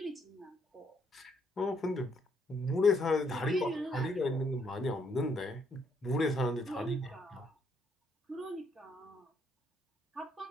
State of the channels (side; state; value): both; normal; correlation 0.72